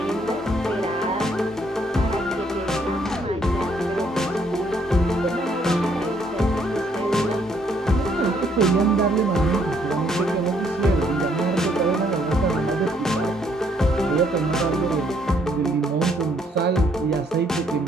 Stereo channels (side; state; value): both; normal; correlation 0.68